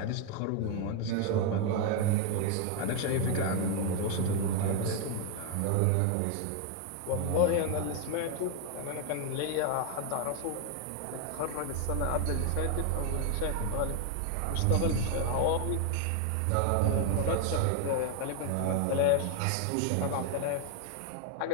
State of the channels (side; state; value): both; different; correlation 0.01